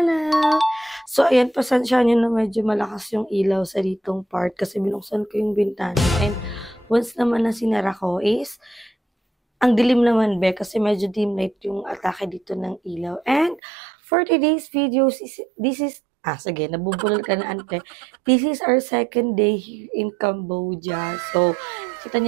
So, ayan, pasensya nyo na medyo malakas yung ilaw sa ditong part kasi binuksan ko yung bintana. And once naman na sinara ko is, ang dilim naman be kasi medyo dim light yung atake dito ng ilaw. And for today's video, sige, nabubulol ka na ante. This is our second day here in Cambodia. So, kita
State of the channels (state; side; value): drops out; left; at 13.6 s